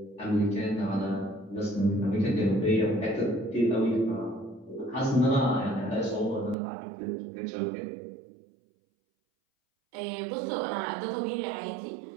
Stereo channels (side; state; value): left; drops out; at 6.6 s